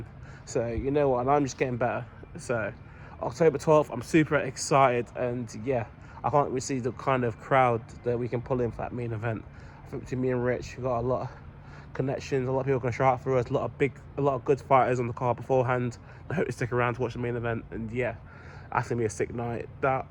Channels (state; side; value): identical; both; correlation 1.00